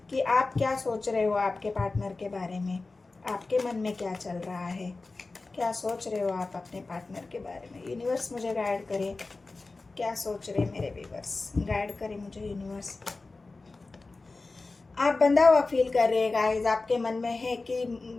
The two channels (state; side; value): quieter; right; 3.6 dB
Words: कि आप क्या सोच रहे हो आपके पार्टनर के बारे में। आपके मन में क्या चल रहा है, क्या सोच रहे हो आप अपने पार्टनर के बारे में। यूनिवर्स मुझे गाइड करे, क्या सोच रहे मेरे व्यूअर्स, गाइड करे मुझे यूनिवर्स। आप बंधा हुआ फील कर रहे हैं गाइज। आपके मन में है कि